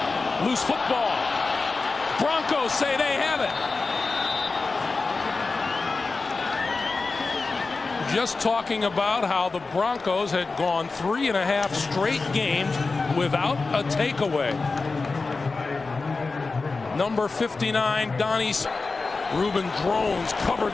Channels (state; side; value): quieter; right; 3.9 dB